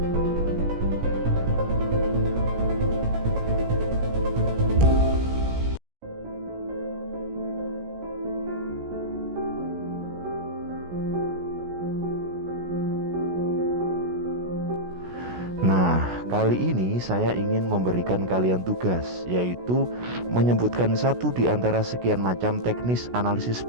Nah, kali ini saya ingin memberikan kalian tugas, yaitu menyebutkan satu di antara sekian macam teknis analisis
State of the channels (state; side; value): late; left; 16 ms